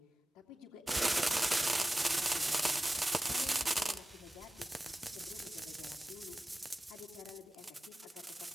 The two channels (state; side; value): normal; both; correlation 0.96